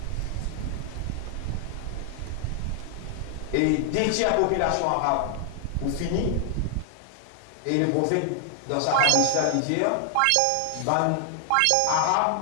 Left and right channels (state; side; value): different; both; correlation 0.00